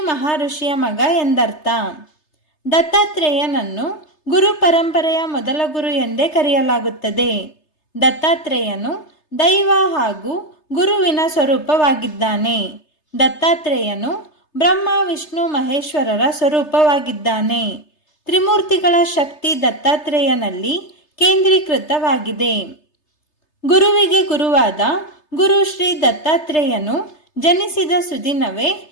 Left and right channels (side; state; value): right; late; 3.3 ms